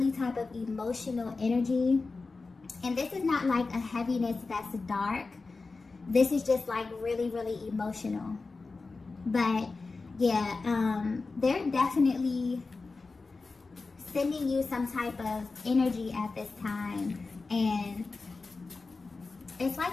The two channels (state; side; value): quieter; right; 3.9 dB